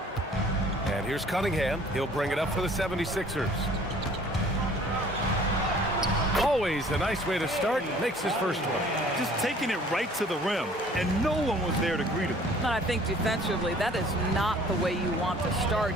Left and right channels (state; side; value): normal; both; correlation 0.53